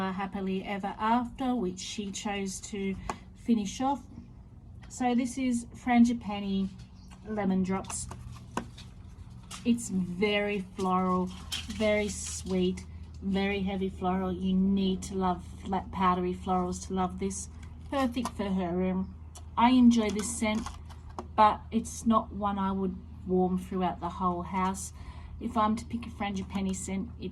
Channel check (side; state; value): both; identical; correlation 1.00